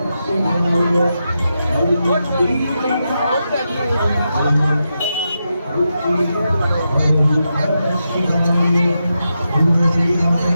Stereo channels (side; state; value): both; inverted; correlation -0.87